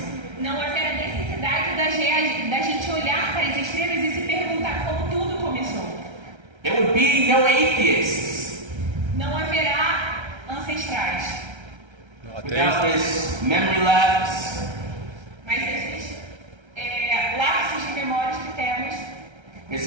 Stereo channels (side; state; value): left; late; 1.3 ms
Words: não haverá necessidade da gente olhar para as estrelas e se perguntar como tudo começou. There would be no atheists. Não haverá ancestrais. without this memory lapse, Mas esses lapsos de memórias que temos,